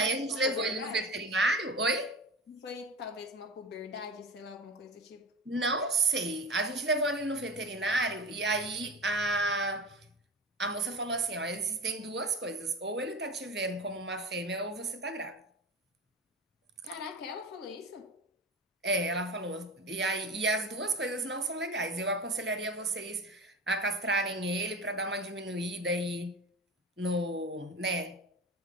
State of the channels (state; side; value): normal; both; correlation 0.30